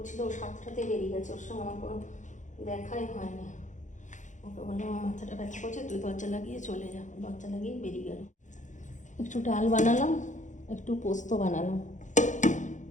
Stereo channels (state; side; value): late; right; 0.36 ms